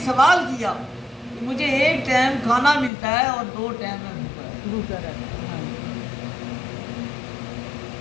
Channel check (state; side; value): drops out; right; at 2.9 s